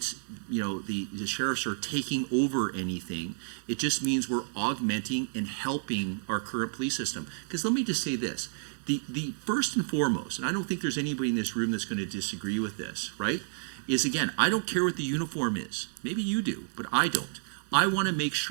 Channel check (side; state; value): left; silent; digital silence